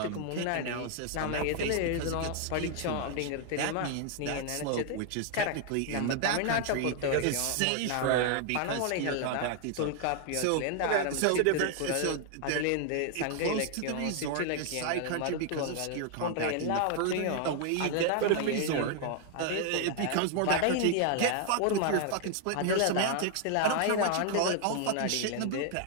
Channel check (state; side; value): different; both; correlation 0.00